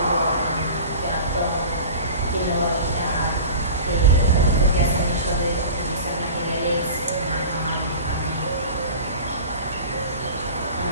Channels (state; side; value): inverted; both; correlation -0.36